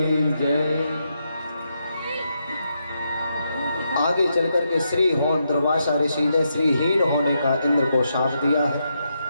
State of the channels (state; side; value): inverted; both; correlation -0.82